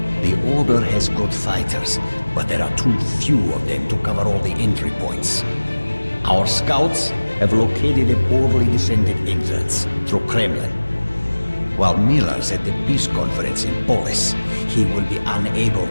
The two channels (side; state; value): both; inverted; correlation -1.00